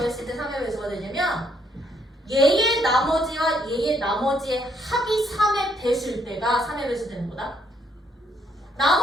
때 3의 배수가 되냐면 얘의 나머지와 얘의 나머지의 합이 3의 배수일 때가 3의 배수 되는 거다.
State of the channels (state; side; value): normal; both; correlation 0.71